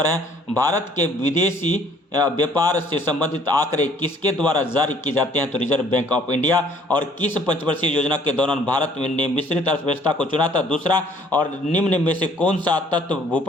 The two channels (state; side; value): normal; both; correlation 0.59